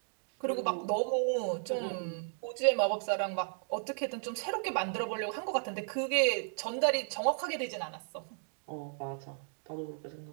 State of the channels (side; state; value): left; silent; digital silence